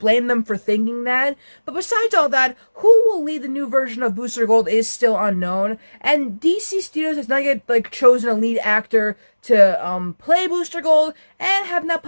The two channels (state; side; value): inverted; both; correlation -1.00